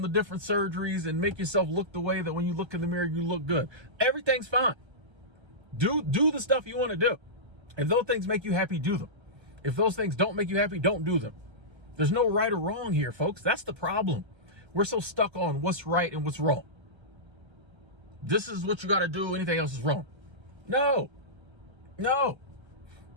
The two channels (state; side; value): late; left; 1.3 ms